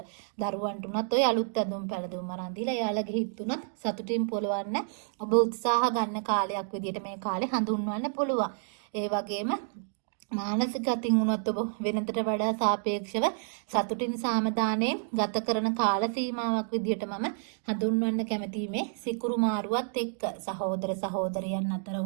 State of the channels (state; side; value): silent; left; digital silence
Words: දරුවන්ට උනත් ඔය අලුත් ඇඳුම් පැළඳුම් අරන් දීලා එයාලගේ හිත උනත් සතුටින් පොළවන්න ඔබ උත්සාහ ගන්න කාලයක් විදියට මේ කාලේ හඳුන්වන්න පුළුවන්. ඒ වගේම මානසික අතින් උනත් ඔබ වෙනතට වඩා සාපේක්ෂව සතුටින් සාමදානයෙන් ගත කරන කාල සීමාවක් විදියට මම හඳුන්වන්න කැමතියි මේ සිකුරු මාරුවත් එක්ක. සහෝදර සහෝදරියන් අතර